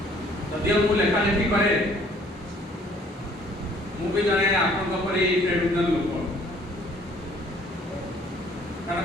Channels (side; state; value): both; normal; correlation 0.58